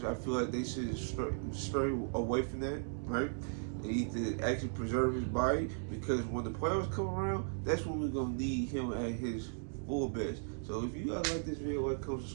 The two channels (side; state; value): left; silent; digital silence